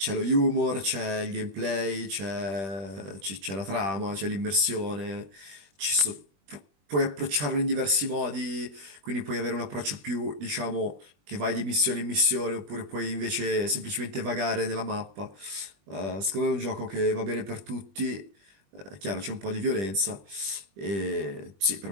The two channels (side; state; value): left; late; 21 ms